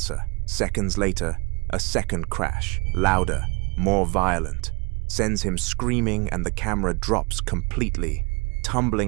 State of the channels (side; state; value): left; quieter; 28.8 dB